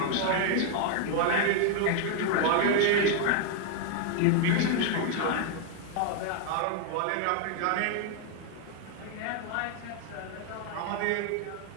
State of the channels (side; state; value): both; different; correlation 0.00